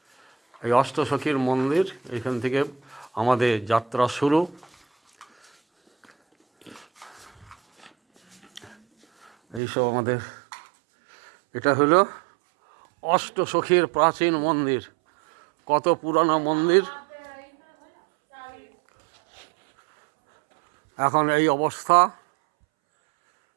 এই অষ্টসখীর মন্দির, এখান থেকে আমাদের যাত্রা শুরু। এইসব আমাদের, এটা হলো অষ্টসখীর প্রাচীন মন্দির। কত পুরানো মন্দির, এখন এই অবস্থা।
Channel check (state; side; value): drops out; left; at 9.6 s